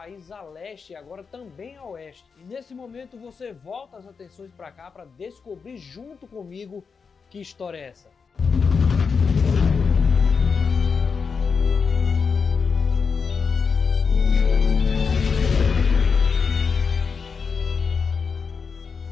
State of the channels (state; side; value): quieter; right; 5.5 dB